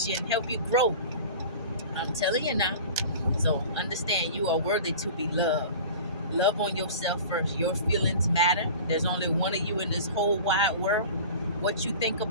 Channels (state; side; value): inverted; both; correlation -0.38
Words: you and help you grow. I'm telling you now. So understand, you are worthy to be loved. Love on yourself first. Your feelings matter. There's only one of you in this whole wide world. What you think